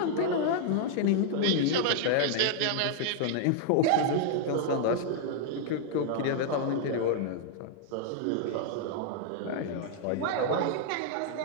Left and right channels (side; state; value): both; different; correlation -0.01